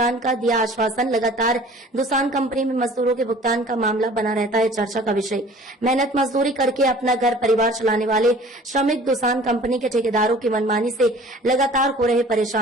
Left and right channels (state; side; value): normal; both; correlation 0.48